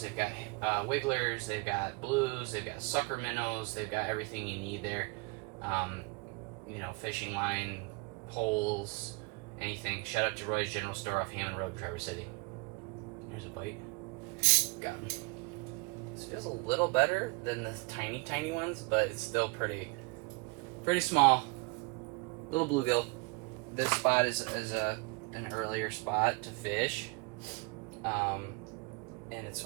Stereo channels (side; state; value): left; quieter; 28.2 dB